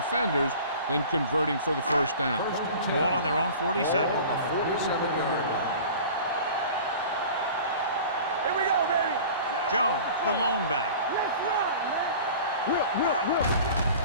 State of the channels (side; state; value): both; inverted; correlation -0.41